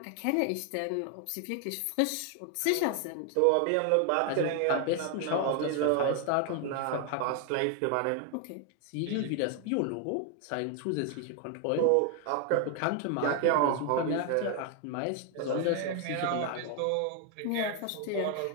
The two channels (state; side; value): different; both; correlation 0.01